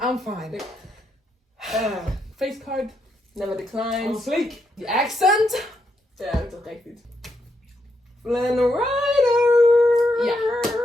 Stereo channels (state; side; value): normal; both; correlation 0.80